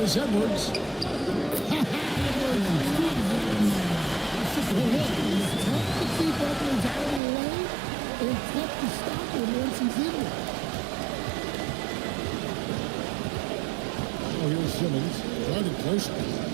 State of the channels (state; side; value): drops out; left; at 7.2 s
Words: Edwards. It's tough to keep Edwards out of the lane and tough to stop him once he's in there. Oh, here's Simmons. Guarded closely.